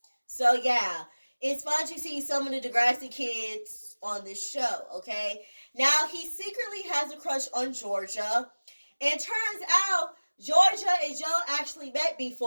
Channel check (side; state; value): both; inverted; correlation -1.00